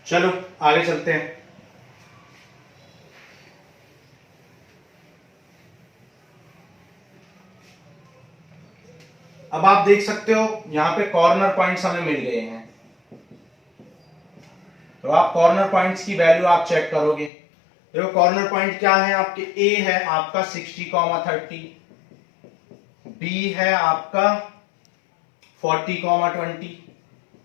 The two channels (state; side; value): drops out; right; at 17.3 s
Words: चलो आगे चलते हैं। अब आप देख सकते हो यहां पे कॉर्नर पॉइंट्स हमें मिल गए हैं, तो आप कॉर्नर पॉइंट्स की वैल्यू आप चेक करोगे। देखो कॉर्नर पॉइंट क्या है आपके, ए है आपका 60,30, बी है आपका 40,20,